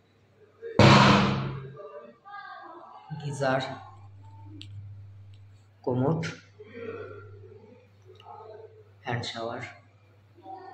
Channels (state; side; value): identical; both; correlation 1.00